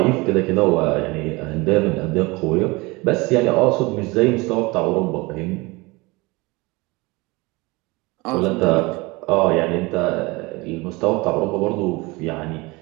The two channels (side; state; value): left; quieter; 24.0 dB